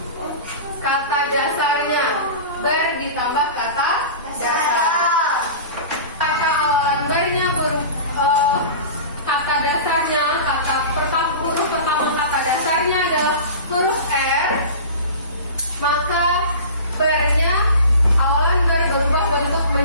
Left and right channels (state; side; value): inverted; both; correlation -0.35